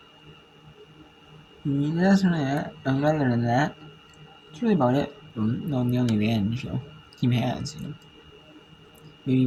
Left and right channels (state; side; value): identical; both; correlation 1.00